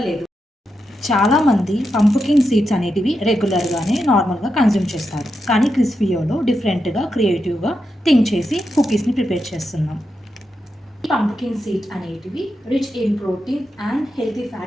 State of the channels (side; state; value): both; normal; correlation 0.86